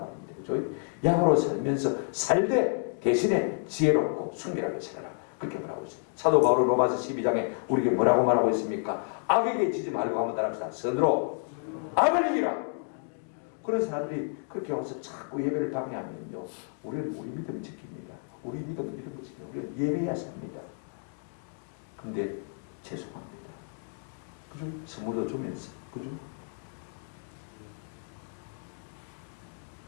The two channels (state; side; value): silent; right; 58 dB below the other